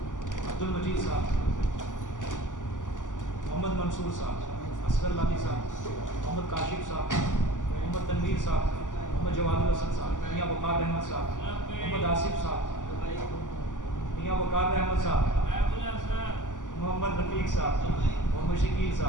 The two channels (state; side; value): late; right; 0.87 ms